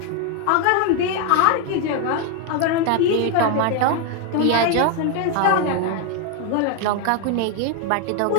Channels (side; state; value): both; different; correlation 0.01